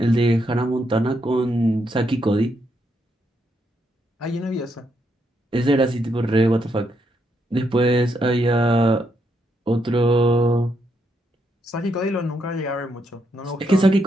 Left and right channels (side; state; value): both; normal; correlation 0.78